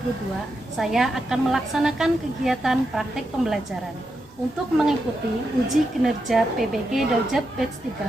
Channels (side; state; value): both; normal; correlation 0.86